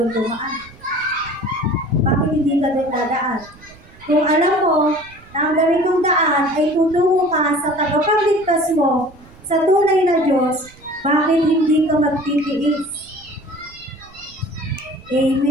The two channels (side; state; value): right; noise; rumble, 24 dB below the sound